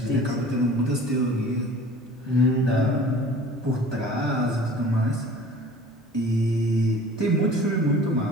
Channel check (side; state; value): both; normal; correlation 0.45